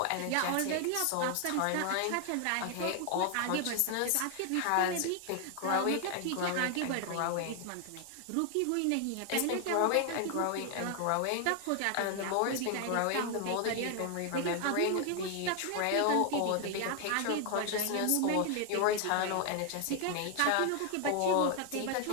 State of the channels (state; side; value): different; both; correlation 0.00